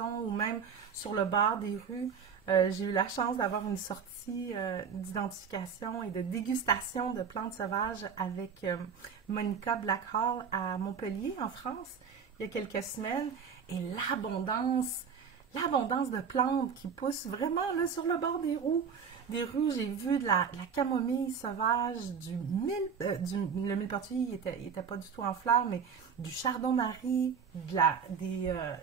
ou même sur le bord des rues. J'ai eu la chance d'avoir une sortie d'identification et de dégustation de plantes sauvages avec Monica Blackhall à Montpellier, en France, il y a quelques semaines. Et l'abondance de plantes qui poussent vraiment là, sur le bord des rues. J'ai vu de la camomille sauvage, le millepertuis, il était pas du tout en fleurs, mais du chardon-marie,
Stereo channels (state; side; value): quieter; left; 6.6 dB